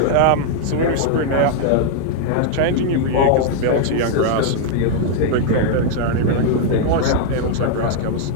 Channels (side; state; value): both; different; correlation -0.01